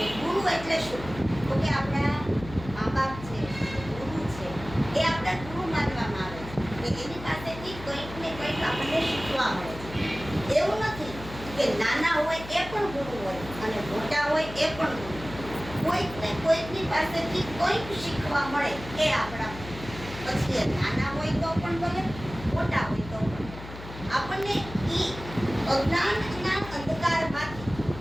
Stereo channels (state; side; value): noise; left; hum, 13 dB below the sound